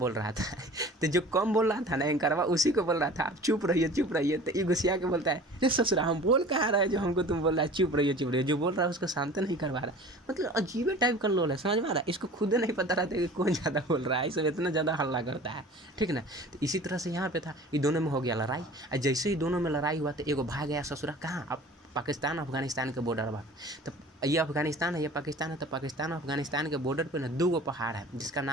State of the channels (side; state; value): both; normal; correlation 0.43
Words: रहा था। तो जो कम बोल रहा था ना एंकरवा, उसी को बोल रहा था आप चुप रहिए। तो ये गुस्सिया के बोलता है, ये ससुरा हम बोल कहाँ रहा है जो हमको तुम बोल रहा है चुप रहिए। जो बोल रहा है उसको शांत नहीं करवा रहा। मतलब अजीब टाइप का लोल है, समझ में आ रहा है। इसको खुद नहीं पता रहता कि कौन ज़्यादा बोल रहा है, इसमें इतना ज़्यादा हल्ला करता है, ठीक ना। तो इसी तरह से यहाँ पे था, ये दोनों में हो गया लड़ाई। और जैसे ही दोनों में लड़ाई हुआ, तो एगो भाग गया ससुरा कहाँ, अब पाकिस्तान अफगानिस्तान के बॉर्डर पर। तो ये अफगानिस्तान है, ये पाकिस्तान है। तो पाकिस्तान अफगानिस्तान के बॉर्डर पे ना 2 पहाड़ है, जिसका